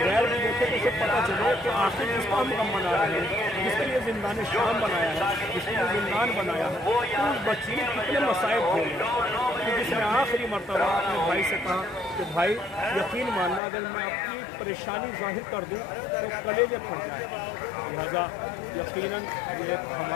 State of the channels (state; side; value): drops out; right; at 13.6 s